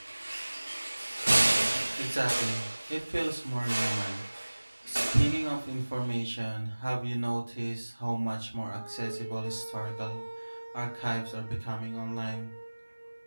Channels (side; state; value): both; inverted; correlation -1.00